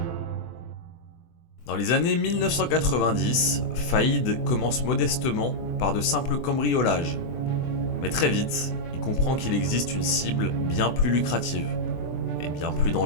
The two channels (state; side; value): late; right; 24 ms